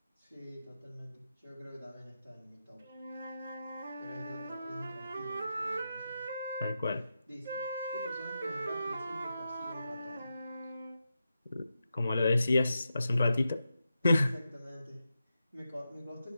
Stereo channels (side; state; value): both; inverted; correlation -0.89